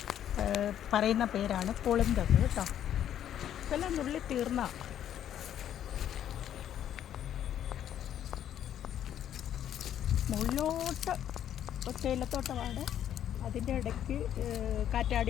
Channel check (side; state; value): right; quieter; 10.4 dB